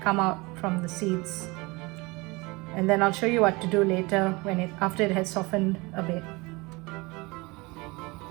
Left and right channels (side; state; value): left; quieter; 24.8 dB